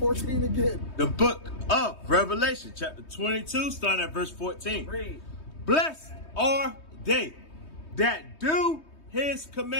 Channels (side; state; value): right; late; 3.2 ms